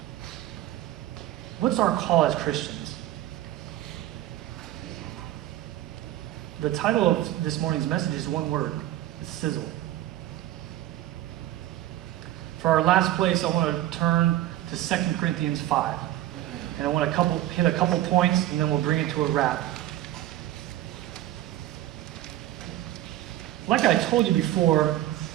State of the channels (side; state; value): left; quieter; 13.9 dB